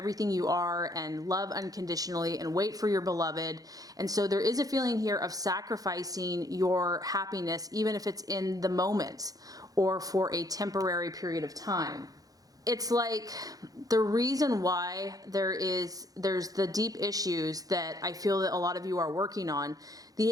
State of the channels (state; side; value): late; left; 0.18 ms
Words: you are and love unconditionally and wait for your beloved. And so there is a feeling here of sacrificing your happiness, even if it's in the moment or for a temporary period of time. It's like the reason why there's the deep issues that I feel that a lot of you are working on. The